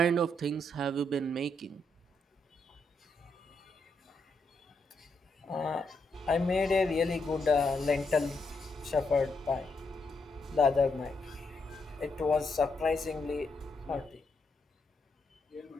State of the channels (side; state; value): both; normal; correlation 0.80